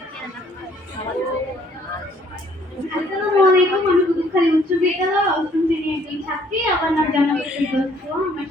আসসালামু আলাইকুম। আমি কোতোয়ালি উচ্চ বিদ্যালয় অষ্টম শ্রেণীর একজন ছাত্রী। আমার নাম জান্নাতুল দোস্ত। আমার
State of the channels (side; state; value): both; normal; correlation 0.62